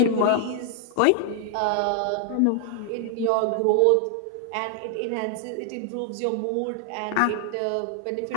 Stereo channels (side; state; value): both; different; correlation 0.00